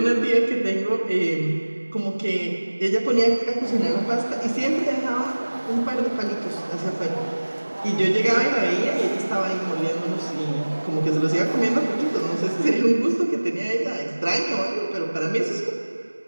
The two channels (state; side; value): inverted; both; correlation -1.00